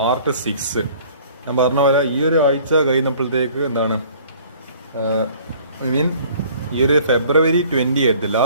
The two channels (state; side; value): inverted; both; correlation -0.53